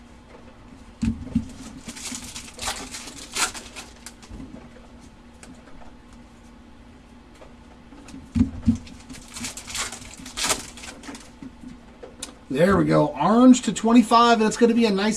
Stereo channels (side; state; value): both; identical; correlation 1.00